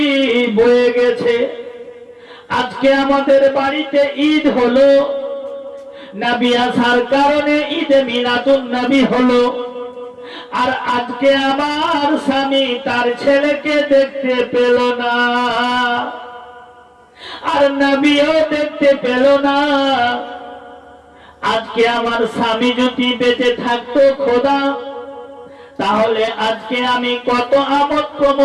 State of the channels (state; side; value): identical; both; correlation 1.00